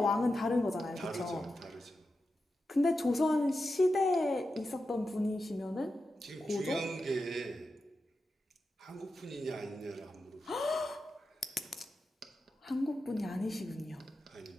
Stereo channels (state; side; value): normal; both; correlation 0.90